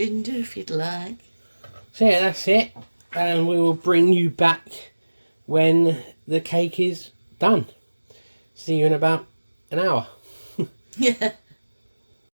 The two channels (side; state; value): both; inverted; correlation -1.00